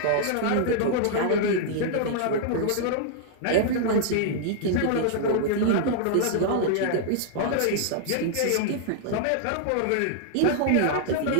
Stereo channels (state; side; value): different; both; correlation -0.01